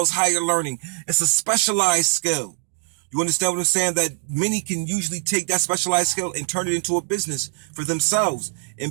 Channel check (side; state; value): left; silent; 64 dB below the other